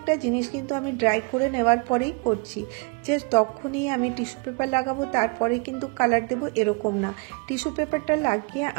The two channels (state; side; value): quieter; left; 31.3 dB